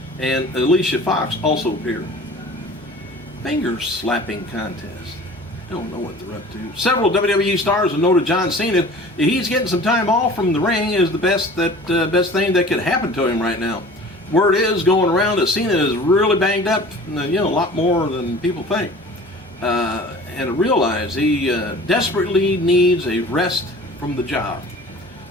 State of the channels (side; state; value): both; normal; correlation 0.43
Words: and Alicia Fox also appeared. Finger slapping contest. I don't know what they're up to. Several WWE stars have noted John Cena. He's getting some time off from the ring is the best thing that could happen to him right now. Word is going around that Cena is really banged up, a lot more than people think. And to realize he desperately needs a rest from the job.